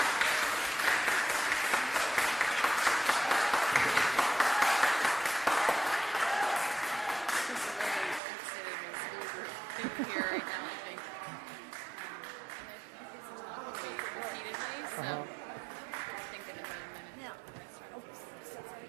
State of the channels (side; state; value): left; drops out; at 8.2 s